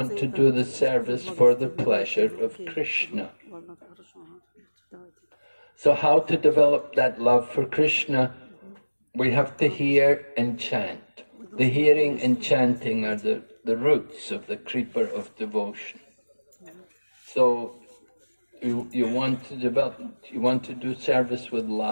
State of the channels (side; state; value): both; inverted; correlation -1.00